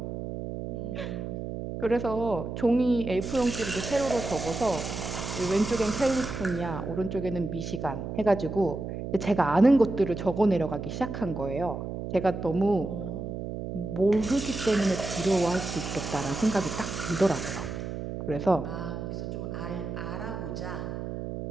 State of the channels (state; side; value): noise; right; hum, 6 dB below the sound